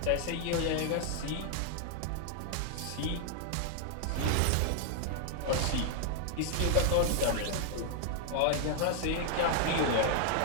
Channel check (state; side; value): different; both; correlation 0.00